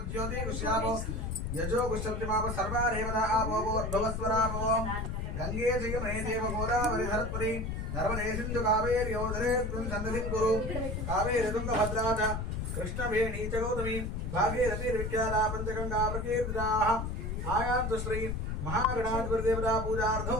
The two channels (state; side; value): noise; left; rumble, 3 dB below the sound